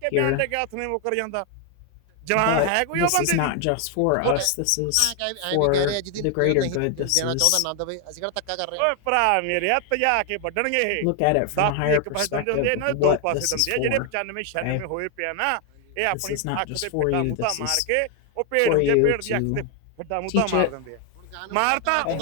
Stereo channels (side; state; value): both; different; correlation 0.01